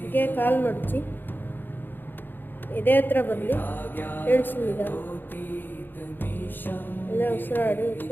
ಹೀಗೆ ಕಾಲು ಮಡಚಿ ಇದೇ ಹತ್ರ ಬರಲಿ, ಇಳಿಸಿದ. ಅಲ್ಲೇ ಉಸಿರಾಡಿ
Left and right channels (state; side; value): late; right; 0.094 ms